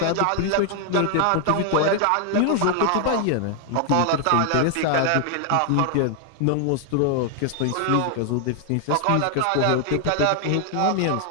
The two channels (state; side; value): different; both; correlation 0.00